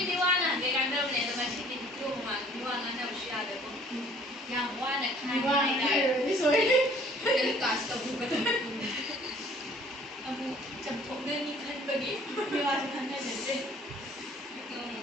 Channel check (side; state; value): both; normal; correlation 0.55